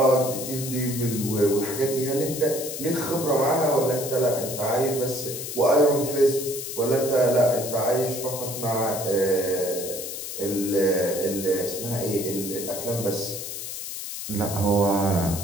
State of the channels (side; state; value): left; noise; hiss, 7 dB below the sound